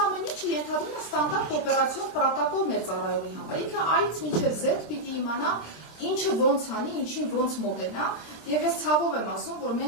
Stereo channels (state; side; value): late; right; 26 ms